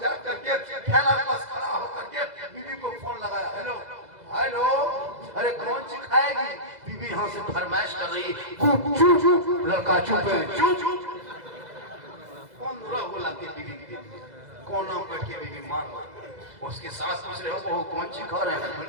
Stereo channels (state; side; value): late; left; 2.0 ms